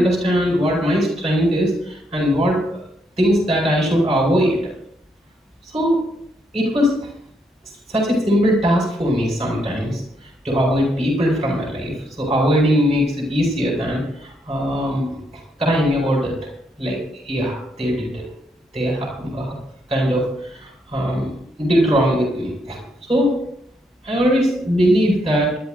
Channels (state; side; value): normal; both; correlation 0.76